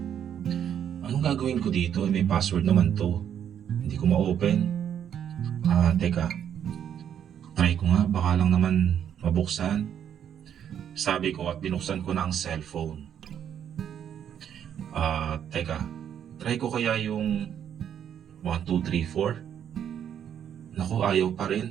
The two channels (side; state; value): left; quieter; 9.2 dB